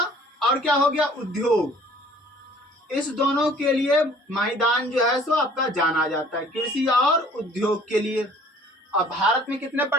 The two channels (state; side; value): normal; both; correlation 0.53